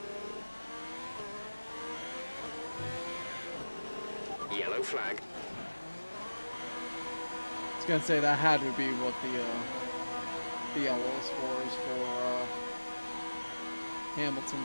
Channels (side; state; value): both; inverted; correlation -1.00